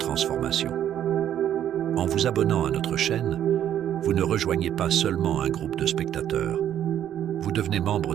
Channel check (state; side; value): quieter; left; 10.6 dB